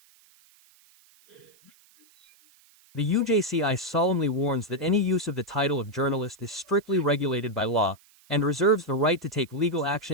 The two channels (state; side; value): noise; right; hiss, 29 dB below the sound